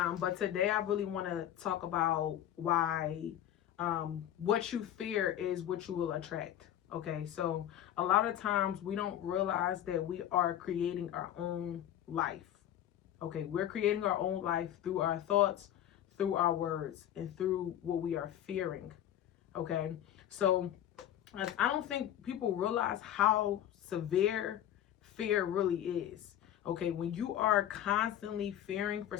today I really want to talk about why what you fear is what you will attract. Okay, so a lot of times we don't realize that we are creating our own life. Okay, we're creating our own life through our thoughts, through our words, and through what we are fearing. Okay, so I don't think people realize how severe fear really is. Okay, when you are constantly fearing for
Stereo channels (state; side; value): quieter; right; 11.3 dB